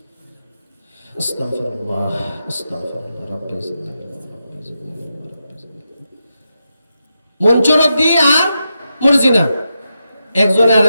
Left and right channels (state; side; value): inverted; both; correlation -0.87